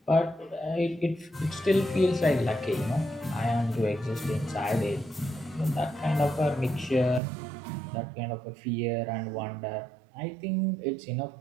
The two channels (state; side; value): drops out; left; at 7.2 s